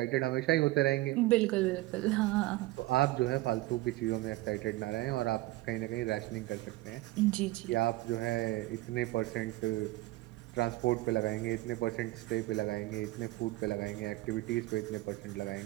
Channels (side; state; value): left; quieter; 18.8 dB